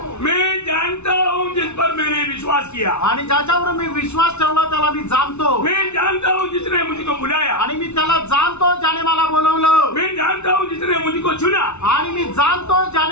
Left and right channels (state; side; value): late; right; 0.81 ms